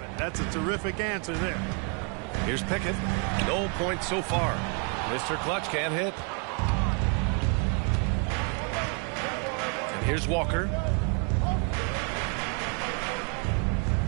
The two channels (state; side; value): quieter; left; 37.3 dB